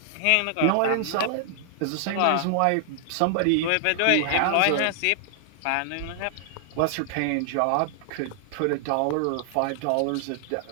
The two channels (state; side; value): different; both; correlation 0.00